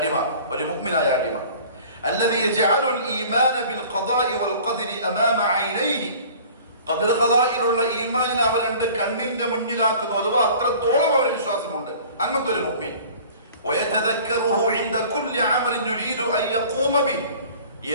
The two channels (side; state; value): both; inverted; correlation -0.46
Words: ഒരു മുഅ്മിനായ അടിമ, الذي يجعل الإيمان بالقضاء والقدر أمام عينيه, ഖദർ ഖദായിലുള്ള ഈമാനിനെ അവന്റെ കണ്ണിന്റെ മുന്നിലാക്കുന്നു. അഥവാ അത്രത്തോളം അവന് വിശ്വാസമുണ്ട് അങ്ങനത്തെ ഒരു മുഅ്മിൻ. ويتذكره عند كل عمل يريد أن يقوم به,